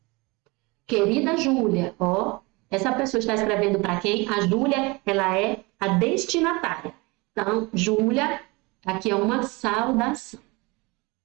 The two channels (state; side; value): quieter; left; 25.6 dB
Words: Querida Júlia, essa pessoa está escrevendo para quem? A Júlia, ela é a destinatária. Então, Júlia, aqui é uma saudação.